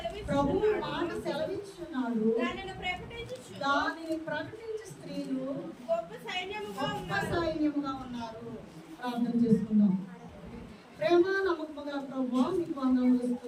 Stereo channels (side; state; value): both; identical; correlation 1.00